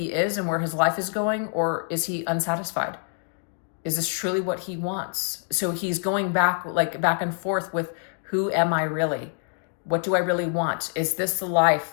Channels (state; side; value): silent; right; 58 dB below the other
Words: is and where his life is going, or is he unsatisfied? Is this truly what he wants? So he's going back and forth with, who am I really? What do I really want? Is this the